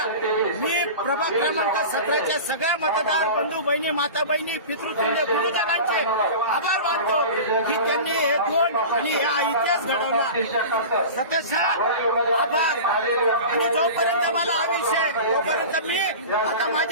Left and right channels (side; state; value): both; inverted; correlation -0.33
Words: मी प्रभाग क्रमांक 17च्या सगळ्या मतदार बंधू बहिणी, माता बहिणी, पितृतुल्य गुरुजनांचे आभार मानतो की त्यांनी हे दोन आणि हा इतिहास घडवला। सतत आभार। आणि जोपर्यंत मला हा विषय, तोपर्यंत मी आता